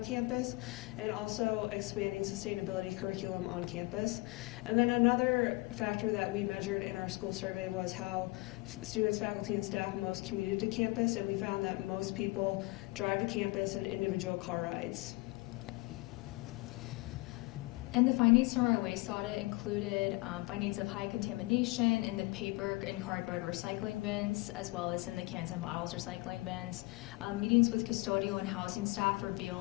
campus, and also expanding sustainability curriculum on campus. And then another factor that we measured in our school survey was how students, faculty, and staff most commuted to campus, and we found that most people drive to campus in individual car rides. And the findings from our waste audit included findings of high contamination in the paper and cardboard recycling bins, as well as in the cans and bottles recycling bins. Meetings with custodial and housing staff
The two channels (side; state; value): right; quieter; 23.7 dB